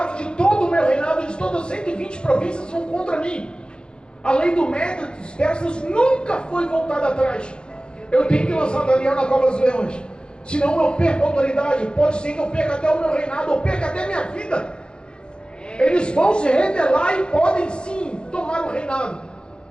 de todo o meu reinado, de todas as 120 províncias vão contra mim. A lei do Médio dos persas nunca foi voltada atrás. Eu tenho que lançar Daniel na cova dos leões, senão eu perco a autoridade. Pode ser que eu perca até o meu reinado, eu perca até a minha vida. Eles vão se rebelar e podem sim tomar o reinado.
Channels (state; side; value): late; right; 0.051 ms